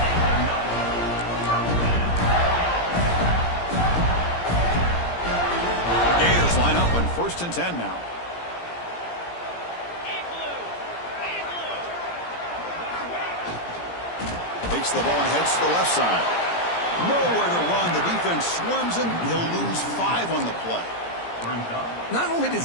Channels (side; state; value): right; late; 17 ms